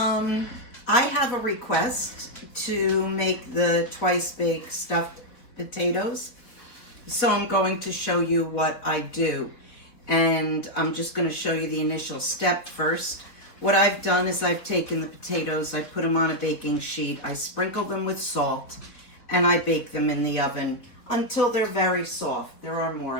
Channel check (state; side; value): late; right; 4.3 ms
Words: have a request to make the twice baked stuffed potatoes. So I'm going to show you what I do. And I'm just going to show you the initial step first. What I've done is I've taken the potatoes, I put them on a baking sheet, I sprinkle them with salt, and I bake them in the oven until they're very soft. There are more